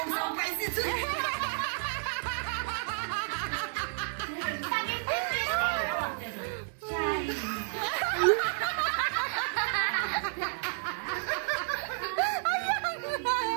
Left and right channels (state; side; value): silent; left; digital silence